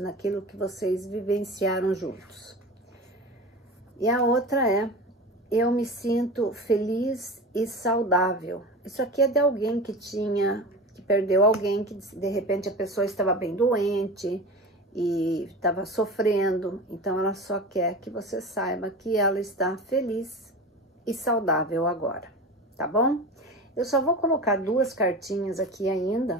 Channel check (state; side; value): normal; both; correlation 0.31